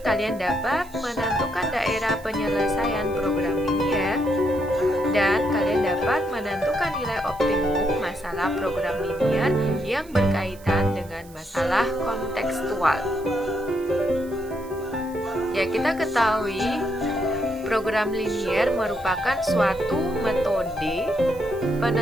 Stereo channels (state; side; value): noise; right; hiss, 23 dB below the sound